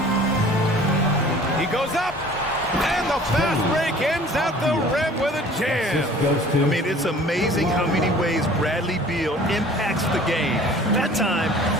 He goes up. And the fast break ends at the rim with a jam. I mean, it's amazing how many ways Bradley Beal impacts the game. That time,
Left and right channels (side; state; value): both; normal; correlation 0.48